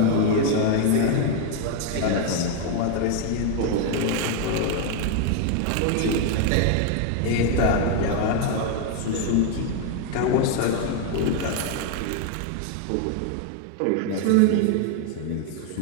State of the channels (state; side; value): different; both; correlation 0.00